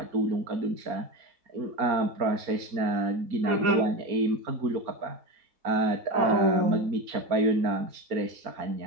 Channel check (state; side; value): late; left; 4.3 ms